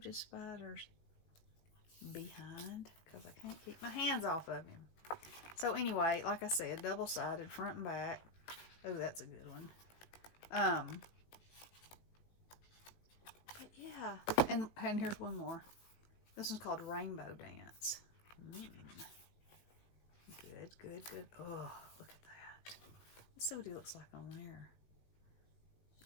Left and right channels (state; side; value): late; right; 18 ms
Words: his spiders behind because I can't keep my hands off of him. So anyway, like I said, double-sided, front and back. Oh, that's a good one. But yeah, and here's one more. This one's called Rainbow Dance. Good, good, good. Oh, look at that. Let's see what he looks like on there.